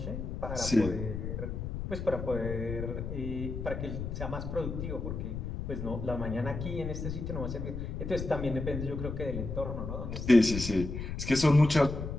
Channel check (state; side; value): noise; left; rumble, 5 dB below the sound